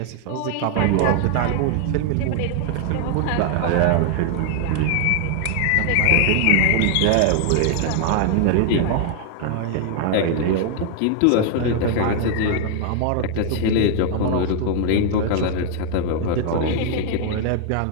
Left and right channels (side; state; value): both; different; correlation 0.00